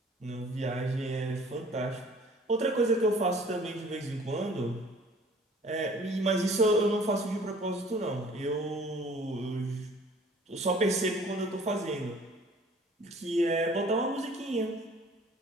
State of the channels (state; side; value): normal; both; correlation 0.52